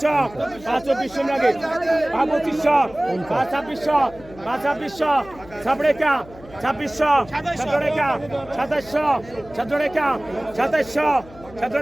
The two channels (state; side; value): noise; left; hum, 20 dB below the sound